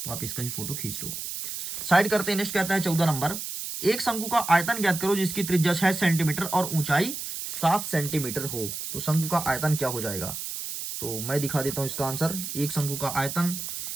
तो आप इसका ही फोटो खींच लो। साइड करते हैं। नेक्स्ट कहता है 14 नंबर, एक शंकु का आयतन ज्ञात करो जिसकी त्रिज्या 6 सेंटीमीटर और ऊंचाई 7 सेंटीमीटर हो। तो शंकु का आयतन क्या हो जाएगा, तो मैं दिखा देता हूं इसका आंसर। एक शंकु का आयतन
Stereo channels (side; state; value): right; noise; hiss, 6 dB below the sound